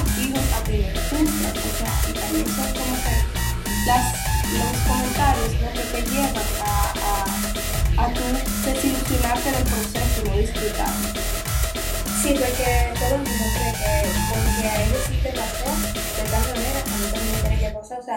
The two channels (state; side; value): identical; both; correlation 1.00